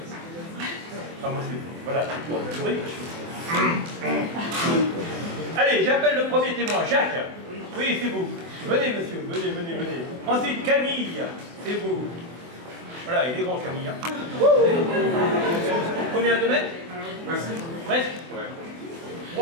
Enfin, moi, voilà, c'est pour le sourire. Allez, j'appelle le premier témoin, Jacques. Oui, c'est vous. Venez, monsieur, venez. Ensuite, Camille, c'est vous. Voilà, il est grand Camille. Hein. Combien de mètres? Presque.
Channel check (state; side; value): late; left; 24 ms